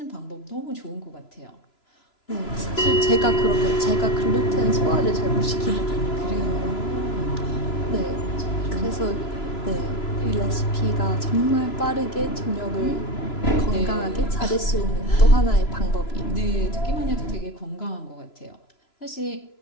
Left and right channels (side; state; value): right; late; 2.9 ms